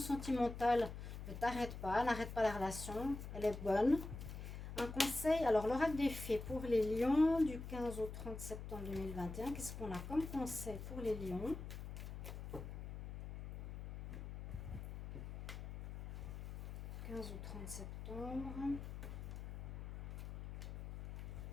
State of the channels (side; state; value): left; noise; hum, 8 dB below the sound